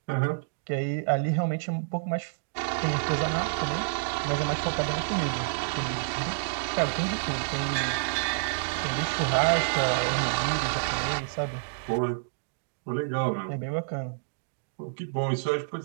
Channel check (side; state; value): left; silent; digital silence